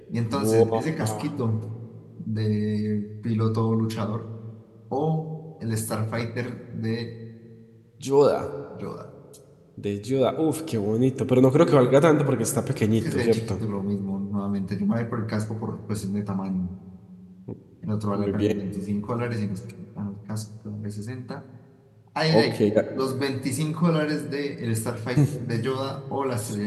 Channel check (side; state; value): both; identical; correlation 1.00